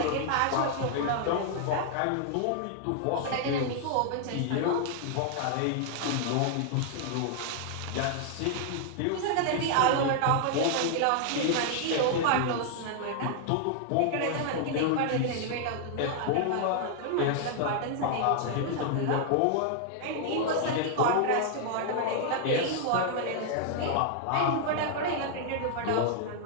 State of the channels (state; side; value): different; both; correlation 0.00